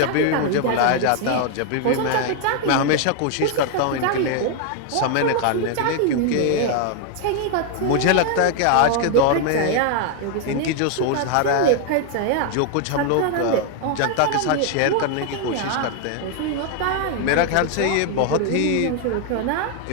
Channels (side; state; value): both; different; correlation 0.00